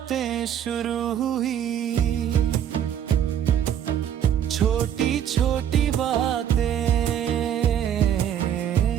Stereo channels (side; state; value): left; quieter; 9.6 dB